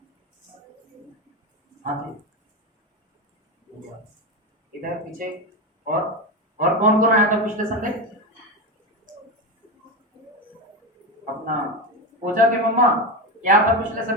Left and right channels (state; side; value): normal; both; correlation 0.16